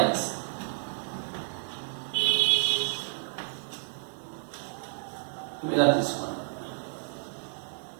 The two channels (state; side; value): silent; left; digital silence